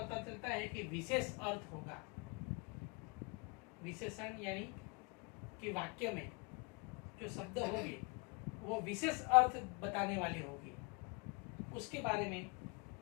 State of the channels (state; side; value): quieter; right; 31.8 dB